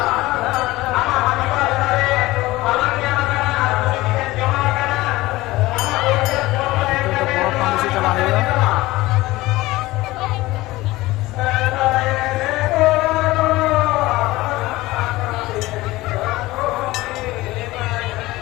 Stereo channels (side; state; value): right; quieter; 18.8 dB